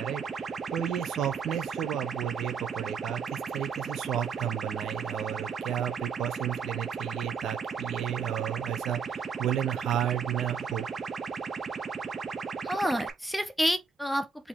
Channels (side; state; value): left; quieter; 5.7 dB